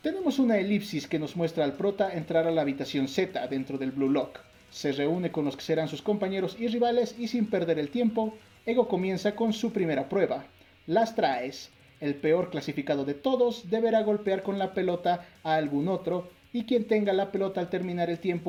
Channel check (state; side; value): identical; both; correlation 1.00